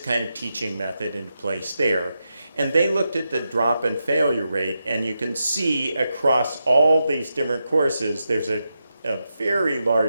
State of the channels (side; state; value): both; inverted; correlation -0.87